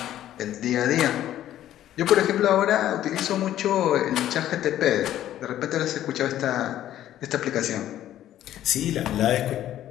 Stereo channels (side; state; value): right; quieter; 12.4 dB